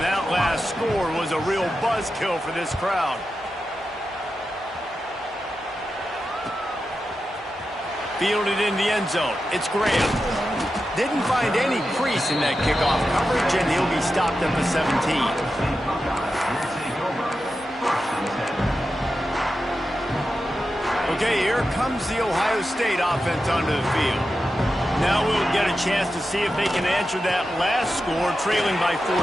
that last score was a real buzzkill for this crowd. Fielded in the end zone. It's Graham. Didn't find any crease in that kickoff coverage, and he'll be stopped at the 17. Okay, here comes the Ohio State offense onto the field. Now we'll get a chance to see if they can answer that last score, trailing by 14,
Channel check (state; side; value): normal; both; correlation 0.90